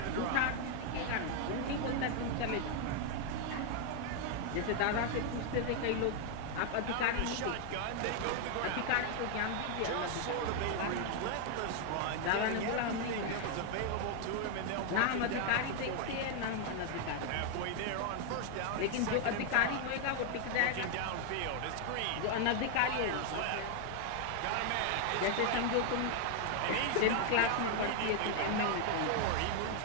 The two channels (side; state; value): both; different; correlation 0.00